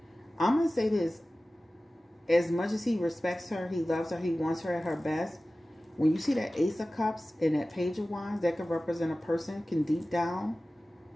I'm going to say this. As much as he respects her, he loves her, he wants her at her best. When you see that Ace of Cups and that Page of Wands, that could represent a person can deep down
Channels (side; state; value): both; normal; correlation 0.96